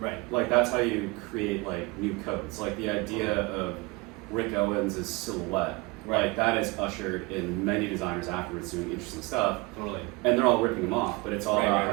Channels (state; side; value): quieter; left; 24.6 dB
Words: Right. Like that's how you create like new codes. Like the idea of Rick Owens' silhouette. Right. Like that is ushered in many designers afterwards doing interesting stuff. Totally. And they're all ripping them off, but it's all Right, about